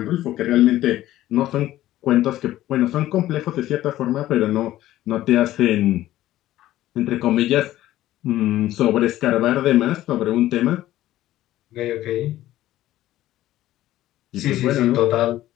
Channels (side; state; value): right; quieter; 14.5 dB